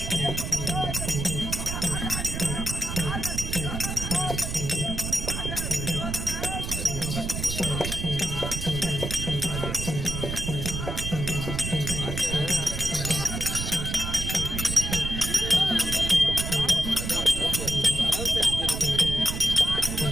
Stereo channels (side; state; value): right; noise; rumble, 4 dB below the sound